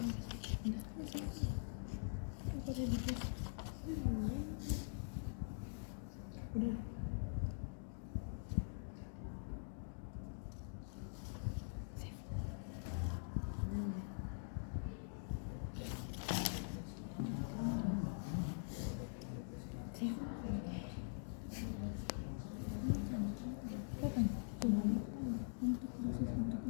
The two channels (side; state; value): right; silent; digital silence